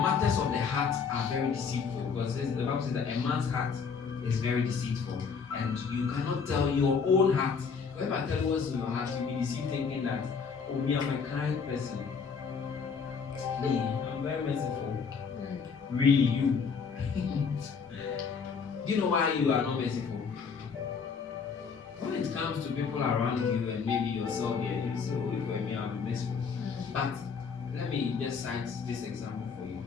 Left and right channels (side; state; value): right; quieter; 5.8 dB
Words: of the heart are very deceitful. Because the Bible says that a man's heart is very deceitful. And you cannot tell your own heart. If I tell you what's in your heart, you'll be deceived thinking that, oh, me, I'm a kind person. Me, I'm very merciful. Really, you. Do you know why you are not merciful? When it comes to people around you and maybe yourself, yeah, you say, oh, if me, I'll be merciful. But let me just cite this example for you.